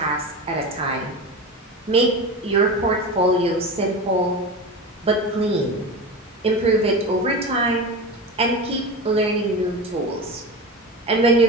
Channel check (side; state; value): both; normal; correlation 0.27